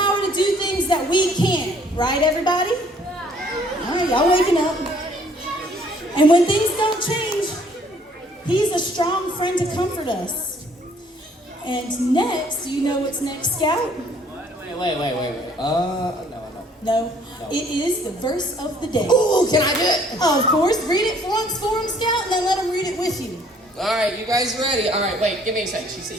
to do things that we can't, right, everybody? All right, y'all waking up. And when things don't change, he's a strong friend to comfort us. And next, do you know what's next, Scout? Wait. No. It is the verse of the day. Ooh, can I do it? Of course, read it once for him, Scout, and then let him read it with you. All right, you guys ready? All right, wait, give me a second.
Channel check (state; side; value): normal; both; correlation 0.60